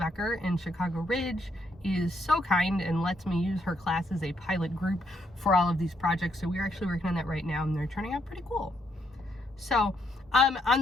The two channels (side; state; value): both; normal; correlation 0.75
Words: in Chicago Ridge is so kind and lets me use her class as a pilot group for all of these projects. So we're actually working on that right now and they're turning out pretty cool. So on